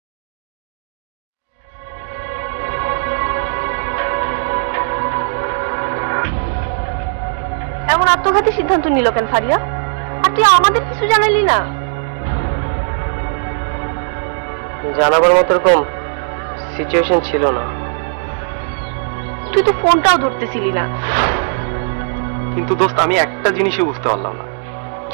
এমন আত্মঘাতী সিদ্ধান্ত নিল কেন ফারিয়া? আর তুই আমাদের কিছু জানালি না? জানাবার মতো এরকম সিচুয়েশন ছিল না। তুই তো ফোনটাও ধরতেছিলি না। কিন্তু দোস্ত আমি একটা জিনিসই বুঝতে পারলাম না,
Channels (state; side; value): silent; left; 68 dB below the other